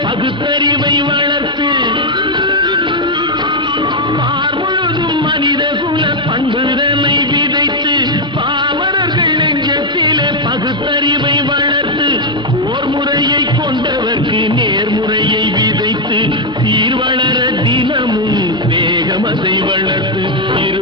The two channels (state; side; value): normal; both; correlation 0.00